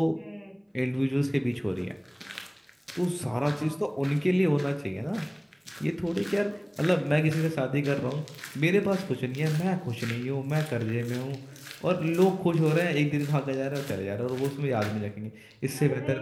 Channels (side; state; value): both; identical; correlation 1.00